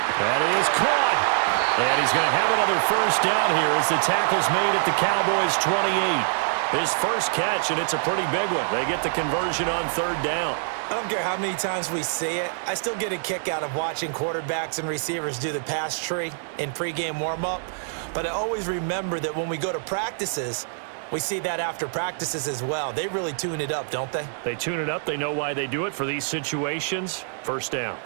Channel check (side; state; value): left; silent; digital silence